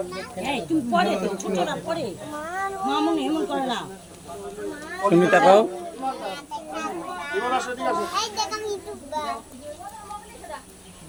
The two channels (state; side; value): identical; both; correlation 1.00